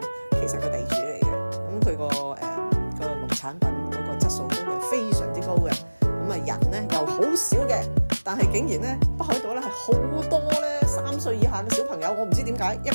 其實個地主嚟嘅。咁佢個農產品嗰個質素都係非常之高嘅。咁啊人咧又好少嘅，但係竟然咧北海道咧係好多咧3歲以下嘅小朋友，我唔知點解一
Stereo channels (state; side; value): inverted; both; correlation -1.00